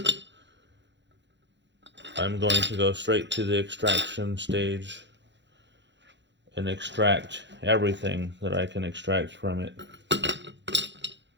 I'm going to go straight to the extraction stage and extract everything that I can extract from it.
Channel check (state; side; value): late; left; 0.52 ms